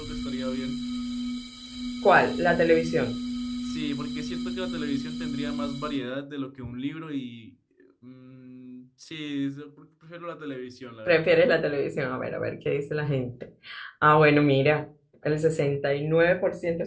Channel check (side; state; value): both; identical; correlation 1.00